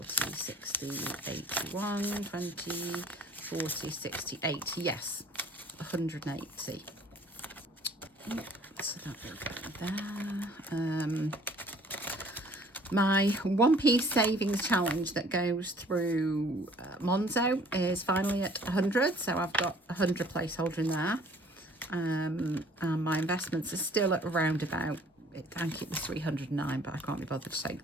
60, 81, 20, 40, 60, 80. Yes, 180. So that will go there. My 1p savings challenge that goes through Monzo is finally at 100, so I've got 100 placeholder in there. And my investments are still at around about, I think it was 309, but I can't be bothered to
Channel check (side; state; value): both; normal; correlation 0.55